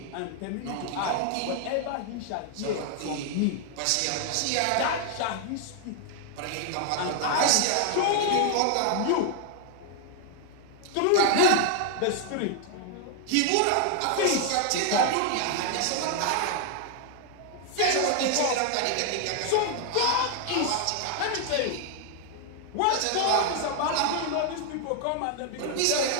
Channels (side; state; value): both; different; correlation 0.00